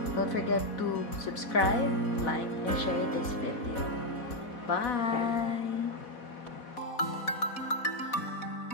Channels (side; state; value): right; late; 4.1 ms